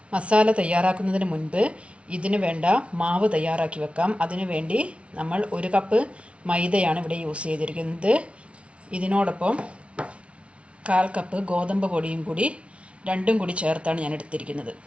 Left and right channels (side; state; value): left; late; 0.061 ms